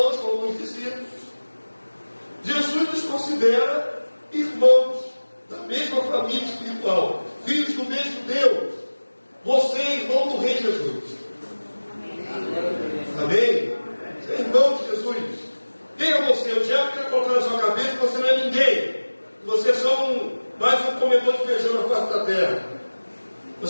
como os discípulos. Jesus nos considera irmãos da mesma família espiritual, filhos do mesmo Deus. Você é irmão do Rei Jesus. Amém? Você é irmão de Jesus. Quem é você? O diabo quer colocar na sua cabeça que você não é ninguém. Você é só mais um comedor de feijão na face da terra.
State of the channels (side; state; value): both; inverted; correlation -1.00